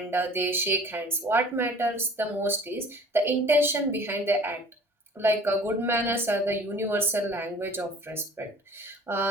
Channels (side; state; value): both; normal; correlation 0.48